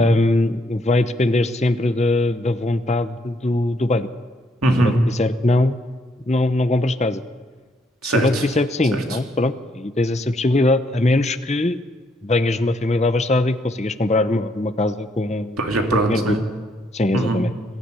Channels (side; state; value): both; normal; correlation 0.72